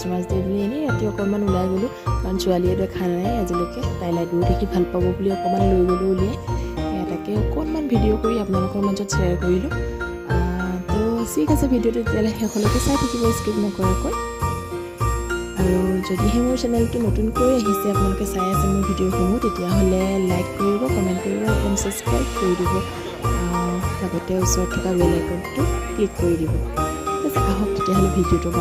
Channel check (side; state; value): both; identical; correlation 1.00